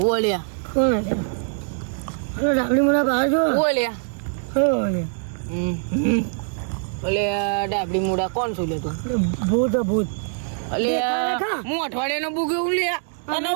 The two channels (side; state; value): left; silent; digital silence